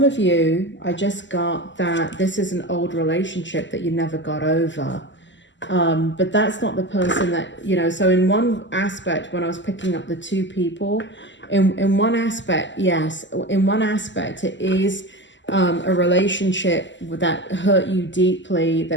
of you, I just got that this is an old relationship that you never got over. But that's not the person that, so in one aspect, when I was picking up the two people, in one aspect, yes, in one aspect, it is a relationship that hurt you deeply,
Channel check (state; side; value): late; right; 0.54 ms